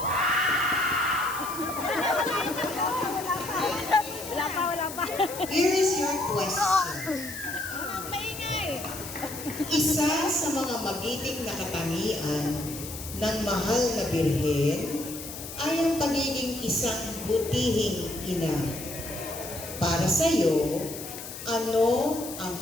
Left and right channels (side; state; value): left; noise; hiss, 11 dB below the sound